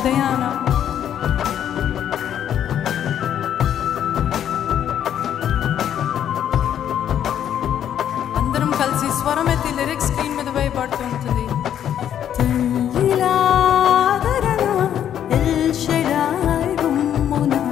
అందరం కలిసి స్వరం ఎత్తి లిరిక్స్ స్క్రీన్ మీద వేయబడుతూ ఉంటుంది.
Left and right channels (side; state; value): right; quieter; 9.9 dB